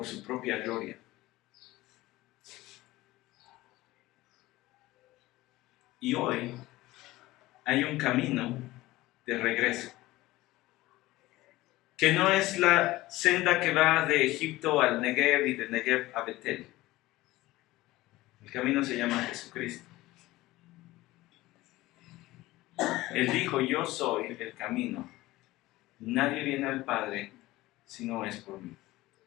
su propia gloria. Y hoy hay un camino de regreso, que no es la senda que va de Egipto al Negev y de Negev a Betel. El camino se llama Jesucristo. Él dijo: yo soy el camino. Nadie viene al Padre si no es por mí.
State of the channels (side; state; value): right; quieter; 18.1 dB